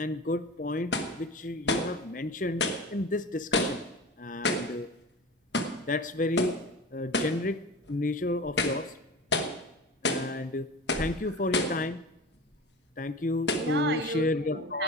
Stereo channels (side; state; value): both; normal; correlation 0.33